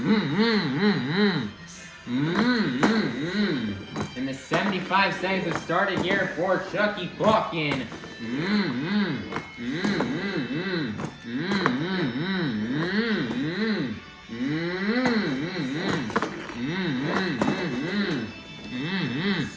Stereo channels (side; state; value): both; identical; correlation 1.00